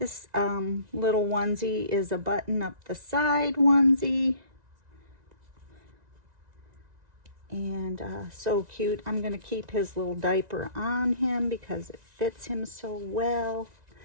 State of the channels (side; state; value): left; late; 1.9 ms